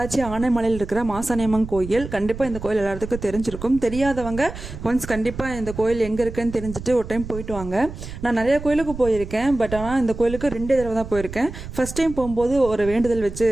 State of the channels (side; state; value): right; noise; rumble, 11 dB below the sound